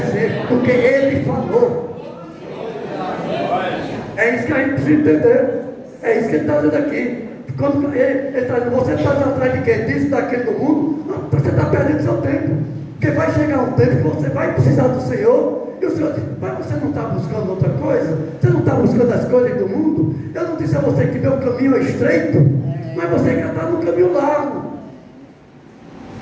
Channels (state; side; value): identical; both; correlation 1.00